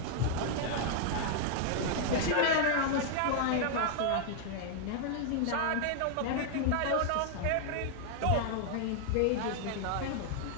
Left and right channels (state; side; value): different; both; correlation 0.00